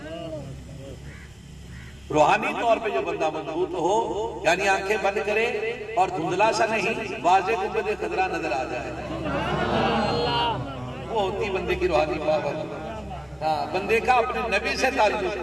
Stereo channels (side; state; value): right; noise; rumble, 28 dB below the sound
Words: रूहानी तौर पे जो बंदा मजबूत हो, यानी आंखें बंद करे और धुंधला सा नहीं, वाज़े गुंबद खदरा नजर आ जाए, वो होती बंदे की रूहानी पावर। हाँ, बंदे का अपने नबी से ताल्लुक।